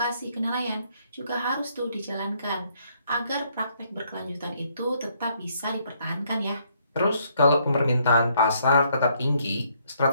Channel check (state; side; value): inverted; both; correlation -0.70